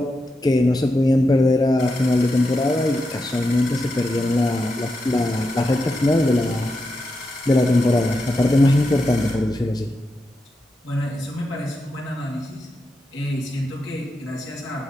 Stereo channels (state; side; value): normal; both; correlation 0.87